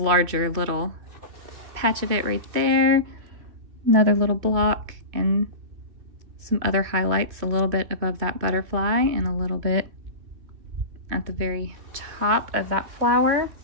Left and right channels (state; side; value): late; left; 2.5 ms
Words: little patch of it right there, another little block, and some other highlights a little bit above that butterfly and a little bit at the very top of that flower.